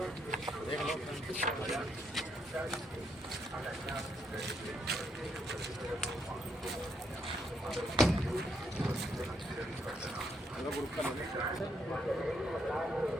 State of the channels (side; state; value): both; normal; correlation 0.74